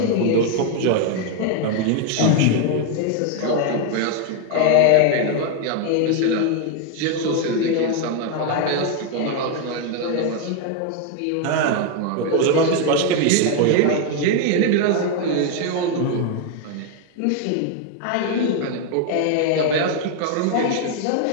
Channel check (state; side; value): different; both; correlation 0.01